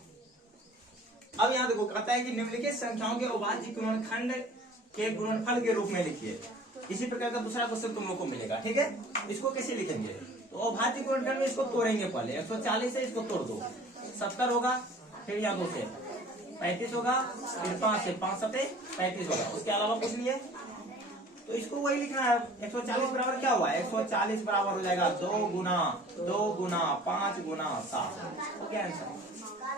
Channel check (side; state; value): both; normal; correlation 0.48